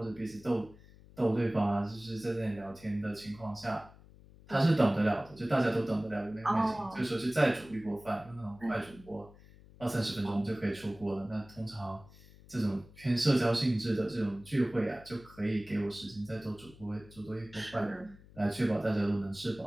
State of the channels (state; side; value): noise; left; hum, 22 dB below the sound